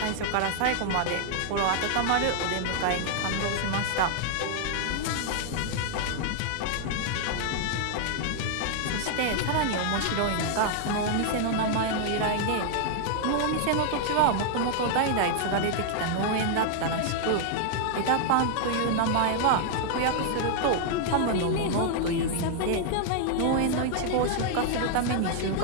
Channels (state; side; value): different; both; correlation -0.01